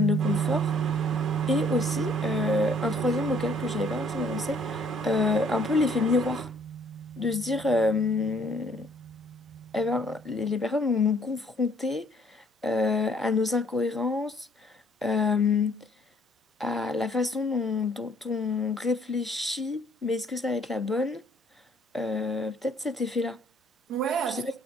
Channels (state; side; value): normal; both; correlation 0.61